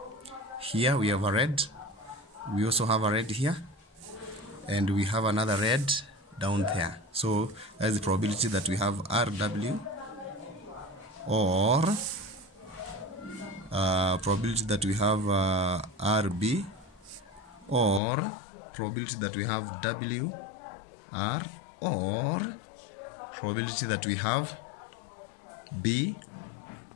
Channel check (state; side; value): drops out; right; at 18.0 s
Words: we have a red. We also have a red here, and we have another red down there. So that is the probability that we have RW, or probability that we have RB, or probability that we have WR, or probability that we have BR.